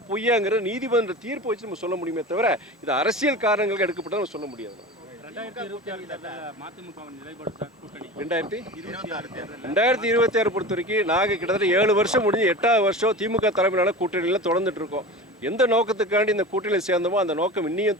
பொய்யாங்கிற நீதிமன்ற தீர்ப்பு வச்சு நம்ம சொல்ல முடியுமே தவிர இது அரசியல் காரணங்களுக்கு எடுக்கப்பட்ட நம்ம சொல்ல முடியாது. 2026 பொறுத்த வரைக்கும் நாங்கள் கிட்டத்தட்ட 7 வருஷம் முடிஞ்சு 8வது வருஷம் திமுக தலைமையிலான கூட்டணியில் தொடர்ந்துட்டு இருக்கோம். எந்த நோக்கத்துக்காண்டி இந்த கூட்டணியில் சேர்ந்தோமோ அந்த நோக்கம்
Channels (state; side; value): normal; both; correlation 0.32